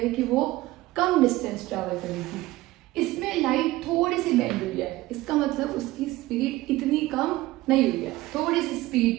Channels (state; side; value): quieter; left; 18.0 dB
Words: कि वो कम डिस्टेंस ट्रैवल करेगी। इसमें लाइट थोड़ी सी बेंड हुई है, इसका मतलब उसकी स्पीड इतनी कम नहीं हुई है, थोड़ी सी